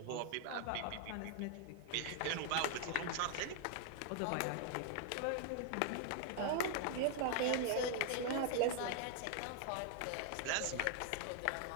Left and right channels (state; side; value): different; both; correlation 0.00